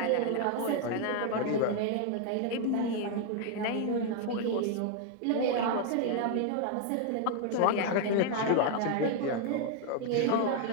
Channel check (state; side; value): different; both; correlation 0.00